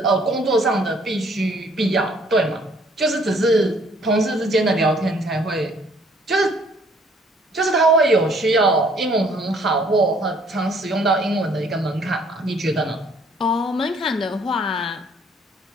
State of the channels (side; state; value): both; normal; correlation 0.61